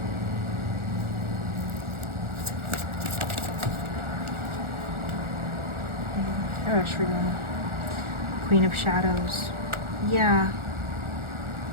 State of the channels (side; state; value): left; late; 1.4 ms